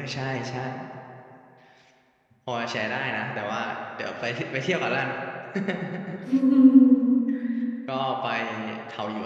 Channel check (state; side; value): identical; both; correlation 1.00